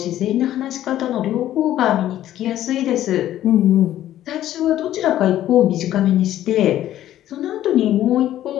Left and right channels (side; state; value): right; quieter; 12.7 dB